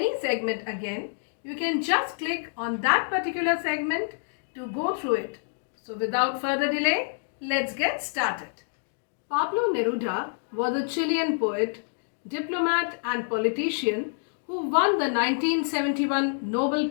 segment again, you can just click on that particular segment to go through it. So without further delay, let's get started. Pablo Neruda was a Chilean poet, diplomat and politician who won the 1971 Nobel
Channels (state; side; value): silent; right; digital silence